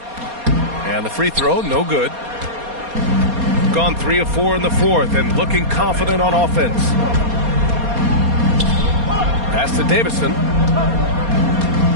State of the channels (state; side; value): late; left; 4.2 ms